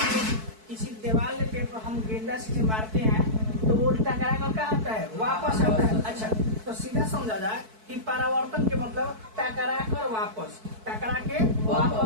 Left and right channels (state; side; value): late; left; 4.6 ms